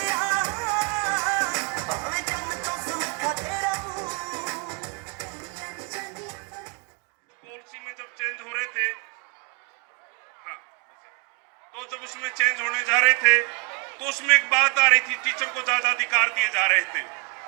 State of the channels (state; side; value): quieter; left; 35.7 dB